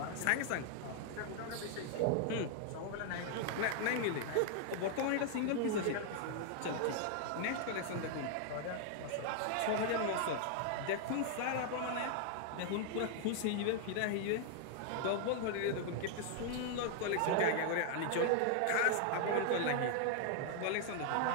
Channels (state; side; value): different; both; correlation 0.00